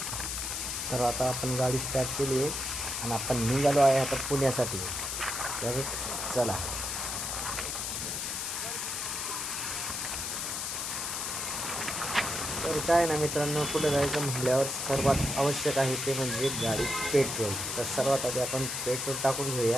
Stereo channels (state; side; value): noise; left; hiss, 2 dB below the sound